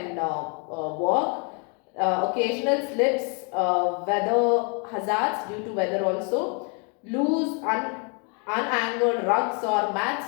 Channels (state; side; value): quieter; right; 36.5 dB